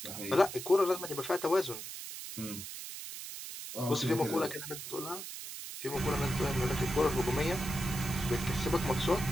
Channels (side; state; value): right; noise; hiss, 9 dB below the sound